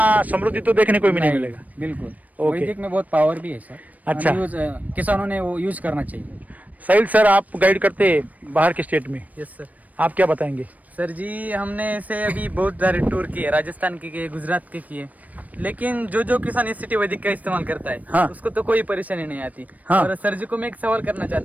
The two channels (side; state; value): left; late; 0.074 ms